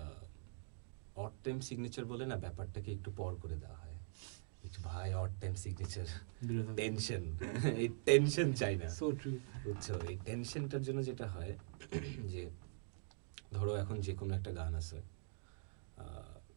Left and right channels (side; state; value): left; silent; digital silence